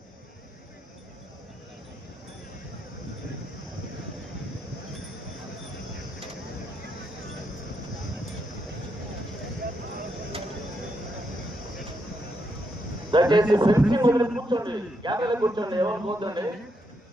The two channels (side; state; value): both; normal; correlation 0.80